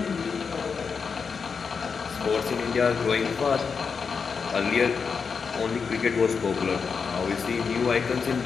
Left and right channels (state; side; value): quieter; right; 5.6 dB